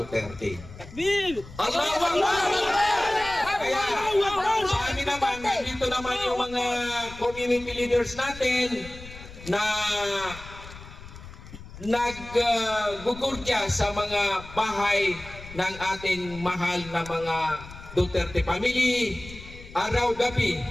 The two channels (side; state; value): left; noise; rumble, 16 dB below the sound